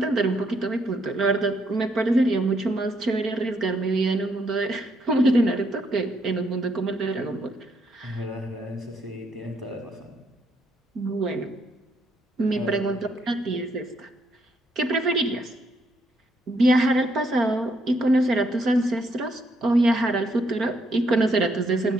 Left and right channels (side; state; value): both; normal; correlation 0.74